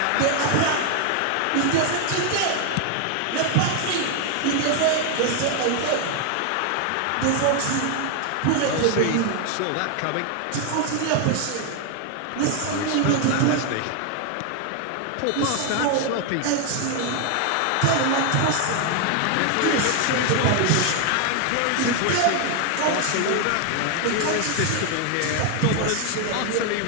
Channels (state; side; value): different; both; correlation 0.01